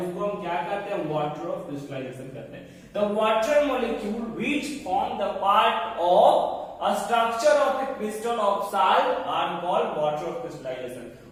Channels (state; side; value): identical; both; correlation 1.00